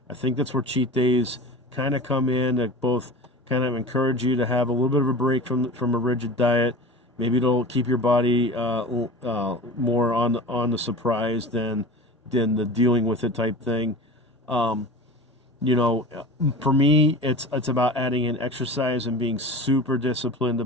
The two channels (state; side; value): normal; both; correlation 0.33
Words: I think that's where cheat days kind of come in, that both kind of encourage you to have a little bit of a break from a rigid diet. Maybe it'll keep your body more on the surprise than the dealing with it type thing. For me, it's about adding in exercise and being super disciplined